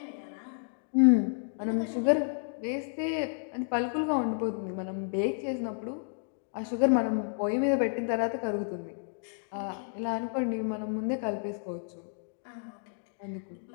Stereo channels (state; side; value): silent; right; digital silence